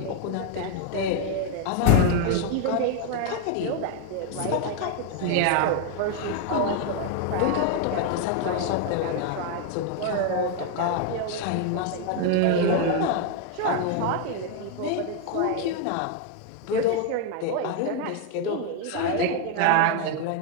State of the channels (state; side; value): different; both; correlation 0.01